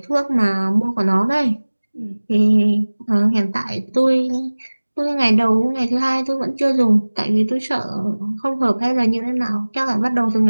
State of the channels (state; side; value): inverted; both; correlation -1.00